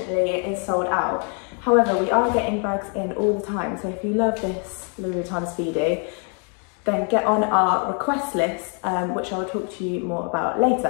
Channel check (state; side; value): quieter; right; 39.9 dB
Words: it is sold out. However, we are getting bags in all the time, so if you love this Louis Vuitton Speedy, then get on our request list, which I'll talk to you more about